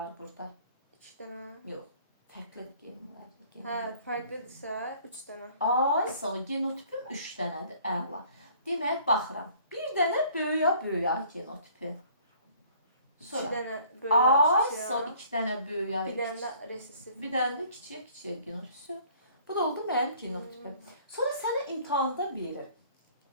burada? 2 dənə. Yox. Fərqli genlər. Hə, fərqlidirsə 3 dənə. Sağ ol. Genotipim 3 dənədir. Əla. Demək, baxıram. Bir dənə böyüyə genotipi. 2 dənə böyüyə, 2 dənə böyüyə. Bir dənə də resistiv. Bir dənə də kiçiyə genotipi. Bu da oldu mənim genotipim. Sonra sənə imtahanda verir.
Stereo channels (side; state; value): both; inverted; correlation -0.56